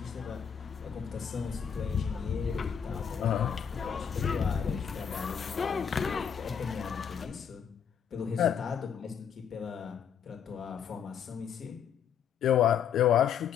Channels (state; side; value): quieter; right; 7.8 dB